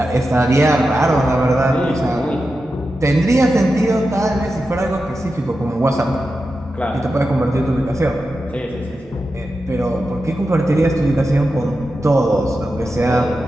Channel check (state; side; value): normal; both; correlation 0.90